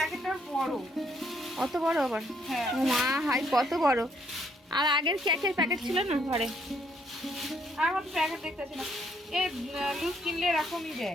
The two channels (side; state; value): both; normal; correlation 0.70